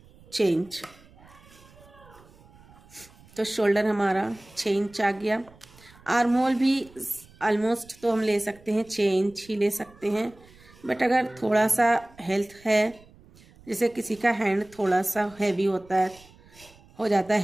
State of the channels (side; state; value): right; noise; rumble, 25 dB below the sound